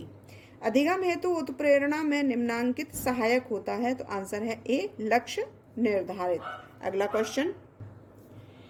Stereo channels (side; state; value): both; identical; correlation 1.00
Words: अधिगम हेतु उत्प्रेरणा में निम्नांकित सहायक होता है, तो आंसर है ए, लक्ष्य निर्धारित। अगला क्वेश्चन,